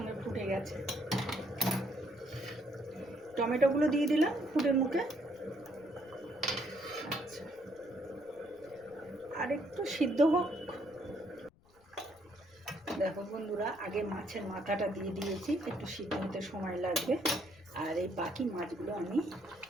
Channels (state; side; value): noise; left; rumble, 29 dB below the sound